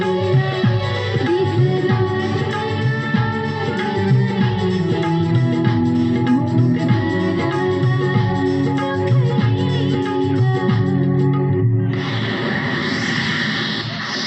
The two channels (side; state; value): both; identical; correlation 1.00